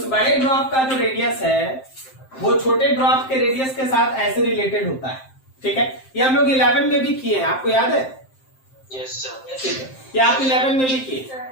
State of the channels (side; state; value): right; late; 7.6 ms